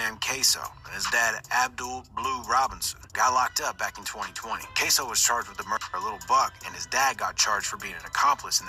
Kasoo, and his dad Abdul Blue Robinson, got locked up back in 2020. Kasoo was charged with the murder of Little Buck, and his dad got charged for being an accomplice in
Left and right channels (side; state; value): both; identical; correlation 1.00